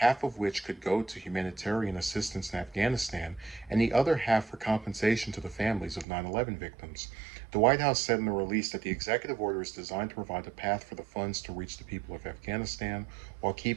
of which could go to humanitarian assistance in Afghanistan and the other half for compensation to the families of 9/11 victims. The White House said in a release that the executive order is designed to provide a path for the funds to reach the people of Afghanistan while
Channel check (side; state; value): left; drops out; at 6.1 s